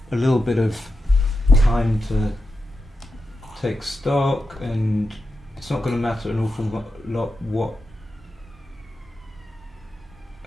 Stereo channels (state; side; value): normal; both; correlation 0.89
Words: little bit of time to take stock, and it's not going to matter an awful lot what